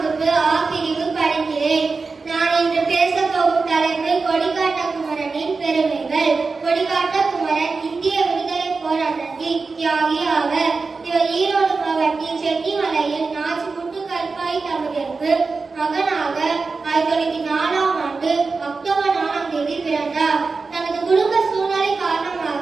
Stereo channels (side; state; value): left; quieter; 4.3 dB